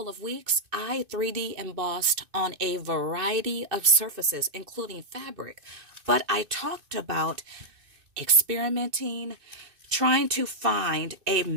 of weeks, I 3D embossed on a variety of surfaces, including fabric. But I talked about experimenting, trying to find a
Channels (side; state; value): left; late; 2.6 ms